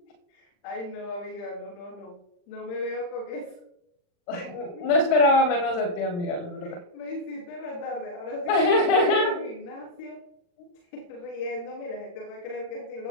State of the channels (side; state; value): right; late; 40 ms